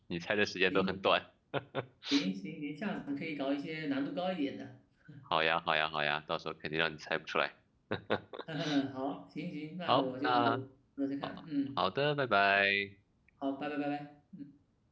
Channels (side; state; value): both; identical; correlation 1.00